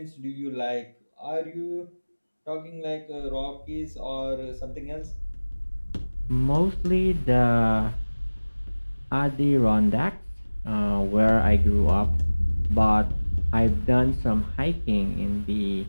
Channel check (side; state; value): both; inverted; correlation -1.00